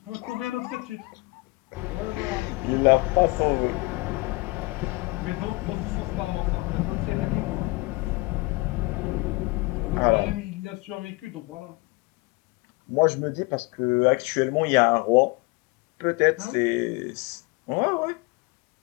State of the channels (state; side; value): quieter; right; 24.5 dB